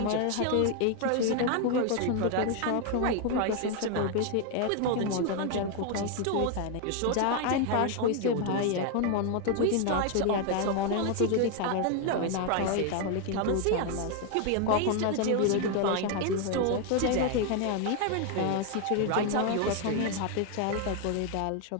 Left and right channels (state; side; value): different; both; correlation 0.01